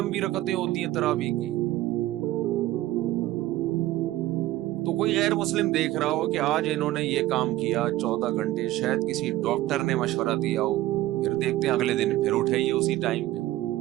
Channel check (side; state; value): left; quieter; 15.9 dB